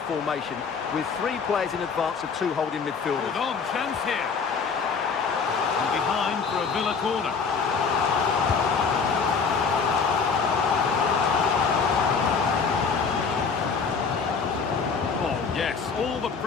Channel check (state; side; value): quieter; right; 5.5 dB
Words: formation with 3 players in advance of 2 holding midfielders. Hold on, chance here. And behind for a Villa corner. Oh, yes, all the